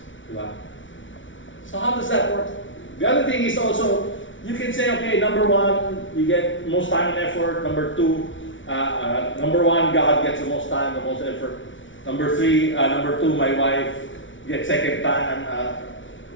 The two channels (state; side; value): late; right; 0.56 ms